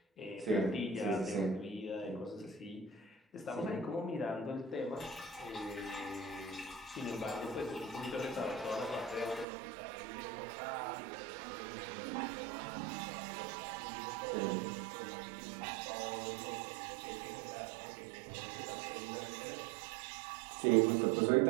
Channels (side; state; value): left; drops out; at 9.5 s